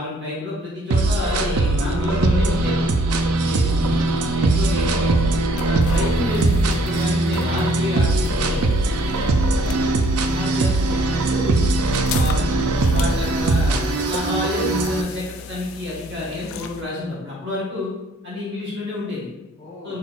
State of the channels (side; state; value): both; normal; correlation 0.63